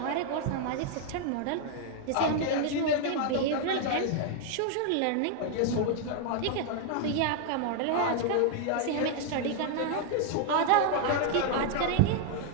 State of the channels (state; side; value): different; both; correlation 0.00